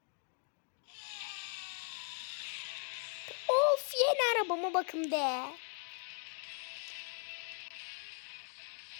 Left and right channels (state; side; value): quieter; right; 38.1 dB